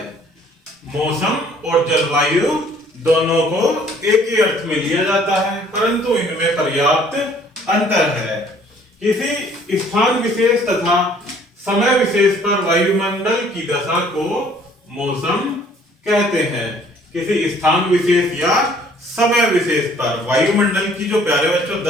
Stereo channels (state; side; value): normal; both; correlation 0.58